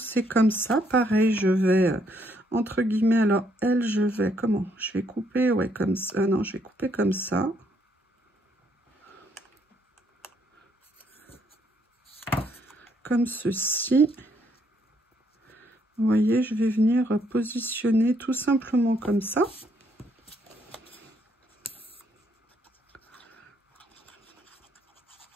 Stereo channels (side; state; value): both; normal; correlation 0.71